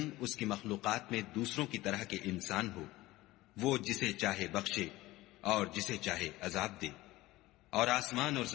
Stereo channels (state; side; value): quieter; right; 18.2 dB